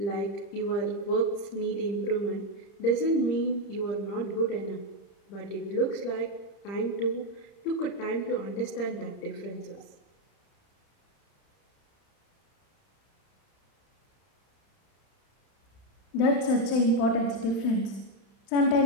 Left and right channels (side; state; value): right; late; 30 ms